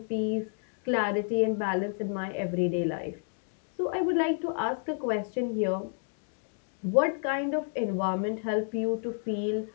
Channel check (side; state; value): right; silent; 58 dB below the other